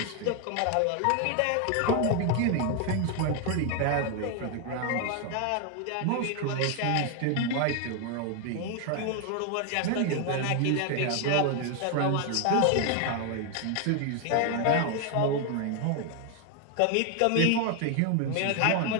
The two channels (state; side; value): different; both; correlation 0.01